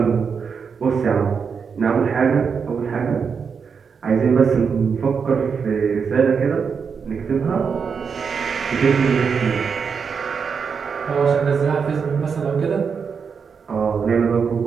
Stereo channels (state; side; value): quieter; left; 6.1 dB